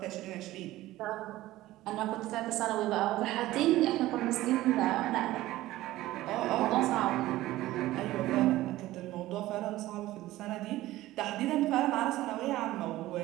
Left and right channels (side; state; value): left; quieter; 16.3 dB